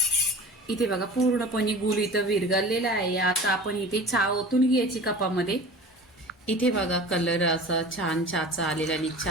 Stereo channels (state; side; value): normal; both; correlation 0.39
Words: इथे बघा पूर्णपणे गूळ इथं विरघळलेला आहे। आता आपण इथे चहा ओतून घ्यायची कपामध्ये। इथे बघा कलर असा छान चहाचा आलेला आणि